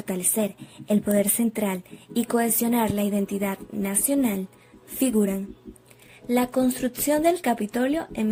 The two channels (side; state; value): both; identical; correlation 1.00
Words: el poder central y cohesionar la identidad nacional, figuran la construcción del Capitolio en